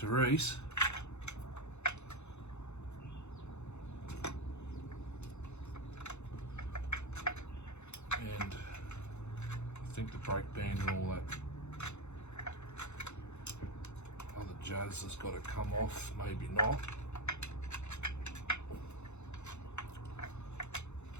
Rhys. And I think the brake band and all that other jazz has got to come off, maybe not.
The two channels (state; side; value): late; right; 0.82 ms